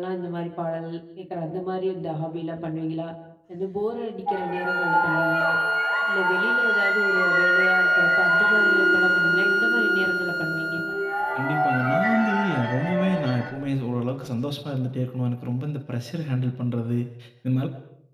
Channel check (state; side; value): identical; both; correlation 1.00